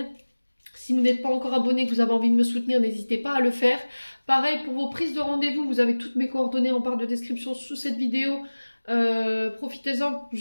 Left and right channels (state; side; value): inverted; both; correlation -1.00